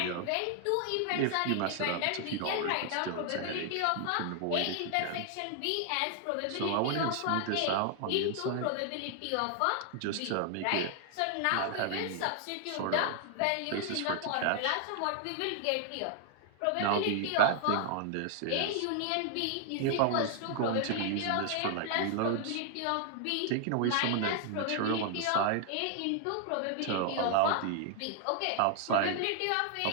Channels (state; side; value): different; both; correlation 0.00